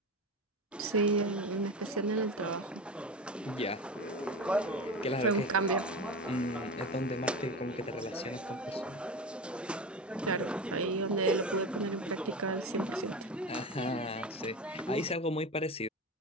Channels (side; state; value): both; normal; correlation 0.26